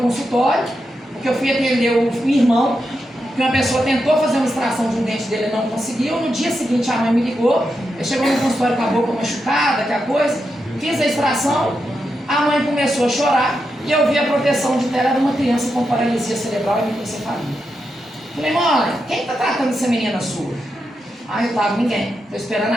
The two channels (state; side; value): normal; both; correlation 0.86